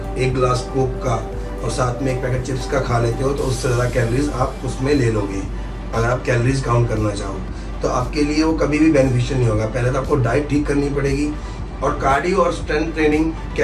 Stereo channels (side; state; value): both; identical; correlation 1.00